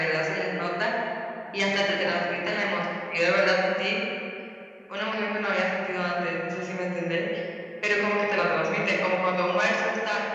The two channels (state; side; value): identical; both; correlation 1.00